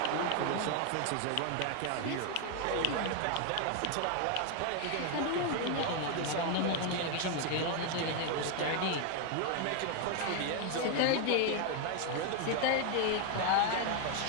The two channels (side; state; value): both; different; correlation 0.01